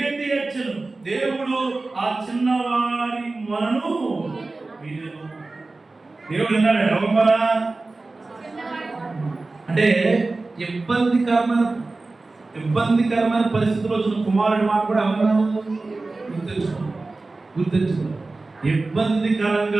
ఏడ్చాను. దేవుడు ఆ చిన్నవారి మనను వినెను. దేవుడు విన్నాడు. ఎవరు అంటే ఇబ్బందికరమైన పరిస్థితుల్లో వచ్చిన కుమారుడి మాట కూడా ఎవరు గుర్తించుకో.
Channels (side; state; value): left; quieter; 3.4 dB